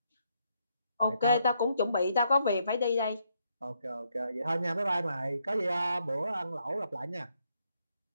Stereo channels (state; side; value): inverted; both; correlation -0.76